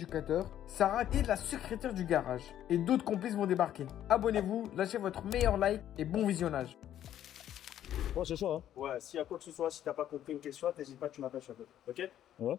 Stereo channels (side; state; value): right; quieter; 11.3 dB